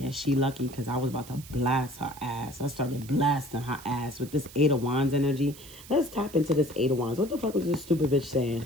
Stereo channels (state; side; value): noise; right; hiss, 18 dB below the sound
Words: she lucky because I was about to blast her ass. I started blasting her ass with this Eight of Wands energy. Let's tap into this Eight of Wands. What the fuck was this stupid bitch saying?